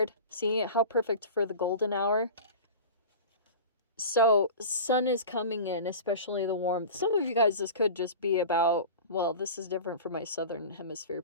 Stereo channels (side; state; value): both; inverted; correlation -0.35